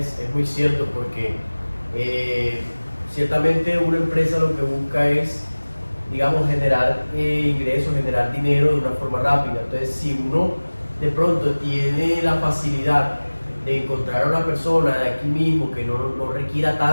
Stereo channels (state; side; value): inverted; both; correlation -1.00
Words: muy cierto, porque ciertamente una empresa lo que busca es, digamos, generar ingresos, generar dinero de una forma rápida. Entonces, si uno de pronto tiene la facilidad de encontrar a una persona de aquí mismo que no requiera